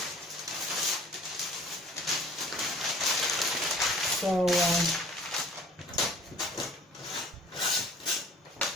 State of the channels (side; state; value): both; normal; correlation 0.50